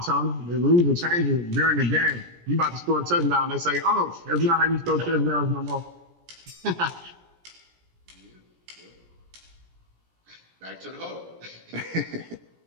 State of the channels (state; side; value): late; left; 17 ms